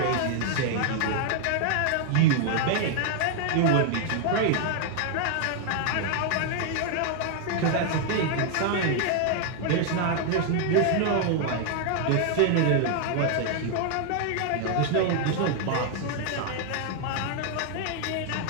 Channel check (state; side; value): different; both; correlation 0.00